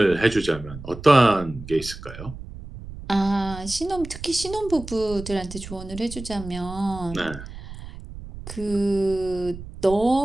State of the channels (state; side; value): noise; right; rumble, 13 dB below the sound